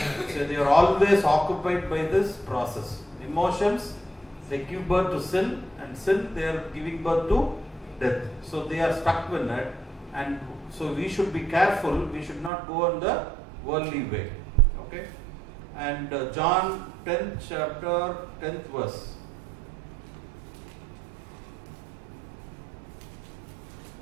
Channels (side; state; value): left; drops out; at 12.5 s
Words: So they are always occupied by this process. Emotions, they give birth to sin, and sin, they are giving birth to death. So they are stuck with it, and so we should be careful. We should not go in the worldly way. Okay? And John 10th chapter, 10th verse.